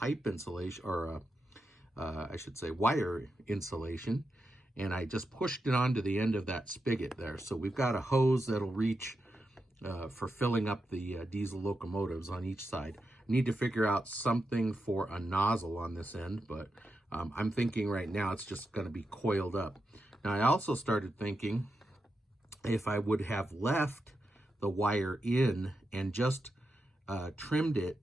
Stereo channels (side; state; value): both; normal; correlation 0.87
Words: insulation, or I should say wire insulation, and I just pushed it onto the end of that spigot there. So we've got a hose that'll reach for filling up the diesel locomotives on each side. Need to figure out something for a nozzle on this end, but I'm thinking right now it's just going to be coiled up. Now I also started thinking if I would have left the wire in and just trimmed